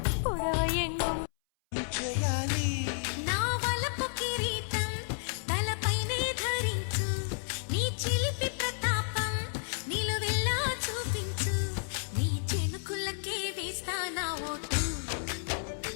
புடவை எங்கும் నిశ్చయాలి నా వలపు కిరీటం తలపైనే ధరించు నీ చిలిపి ప్రతాపం నిలువెల్లా చూపించు నీ చెనుకులకే వేస్తా నా ఓటు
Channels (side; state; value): right; silent; 57 dB below the other